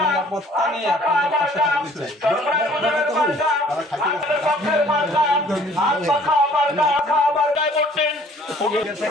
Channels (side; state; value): both; normal; correlation 0.55